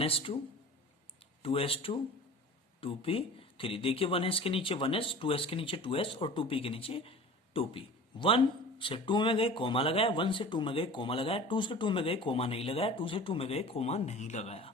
2s2 2p3। देखिए 1s के नीचे 1s, 2s के नीचे 2s और 2p के नीचे 2p। 1 से 2 में गए कोमा लगाया, 1 से 2 में गए कोमा लगाया, 2 से 2 में गए कोमा नहीं लगाया, 2 से 2 में गए कोमा नहीं लगाया।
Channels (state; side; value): normal; both; correlation 0.39